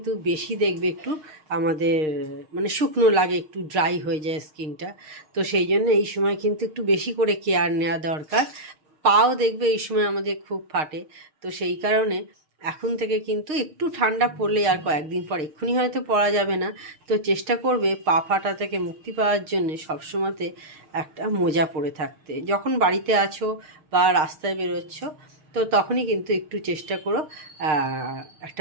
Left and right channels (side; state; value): left; late; 6.5 ms